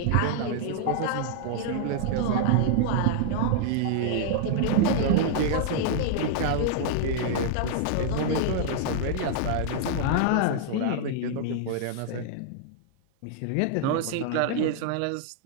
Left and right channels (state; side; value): different; both; correlation -0.01